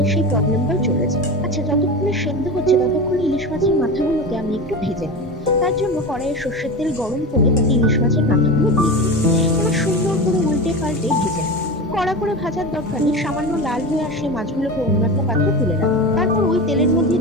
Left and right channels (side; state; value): both; normal; correlation 0.26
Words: সেই প্রবলেমটাও চলে যায়। আচ্ছা, যতক্ষণে সেদ্ধ হচ্ছে ততক্ষণে ইলিশ মাছের মাথাগুলোকে আমি একটু ভেজে নিই। তার জন্য কড়াইয়ে সর্ষের তেল গরম করে তাতে ইলিশ মাছের মাথাগুলো দিয়ে দিই। এবার সুন্দর করে উল্টে পাল্টে ভেজে নিই। কড়া করে ভাজার দরকার নেই, সামান্য লাল হয়ে আসলে মাছগুলোকে অন্য একটা পাত্রে তুলে রাখবো। তারপর ওই তেলের মধ্যে